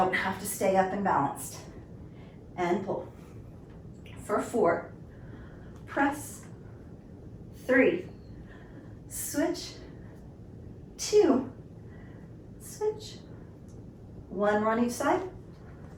have to stay up and balanced. And pull. For 4, press, 3, switch, 2, switch. 1 more on each side.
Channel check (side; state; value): both; identical; correlation 1.00